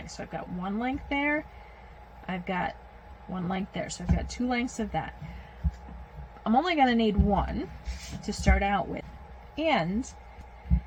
So I've got 1 length there, I've got 1 length there, so I've got 2 lengths of that. I'm only going to need 1 to start out with, and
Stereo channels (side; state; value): both; identical; correlation 1.00